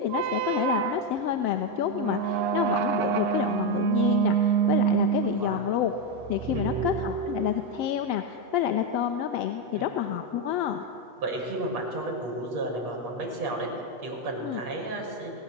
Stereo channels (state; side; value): late; left; 8.3 ms